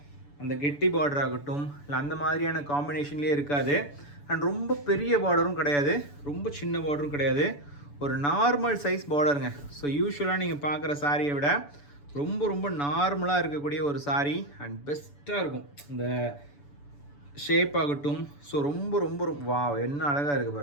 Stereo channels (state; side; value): late; right; 6.9 ms